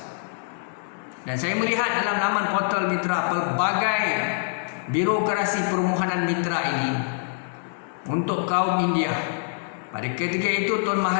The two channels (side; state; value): right; silent; digital silence